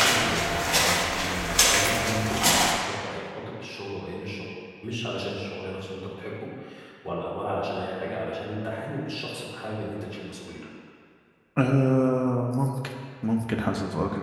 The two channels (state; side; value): identical; both; correlation 1.00